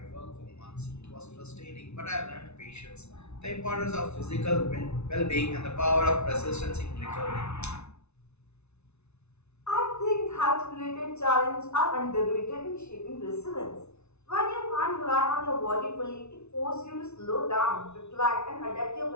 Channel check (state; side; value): late; right; 0.81 ms